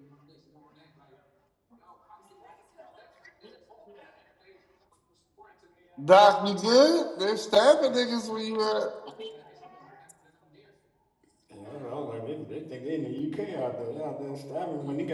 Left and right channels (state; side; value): identical; both; correlation 1.00